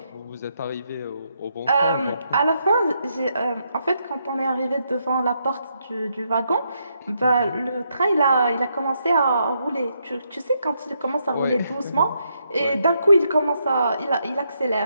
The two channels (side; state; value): both; inverted; correlation -0.78